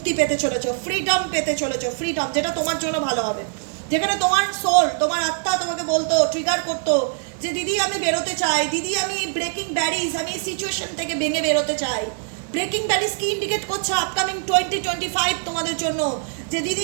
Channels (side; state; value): left; silent; 64 dB below the other